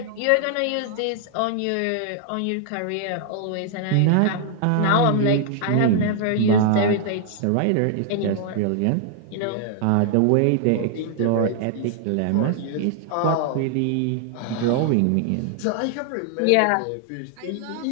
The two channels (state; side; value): different; both; correlation 0.00